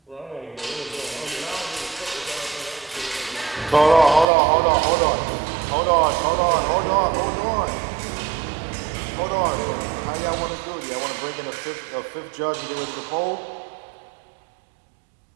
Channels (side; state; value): left; drops out; at 4.2 s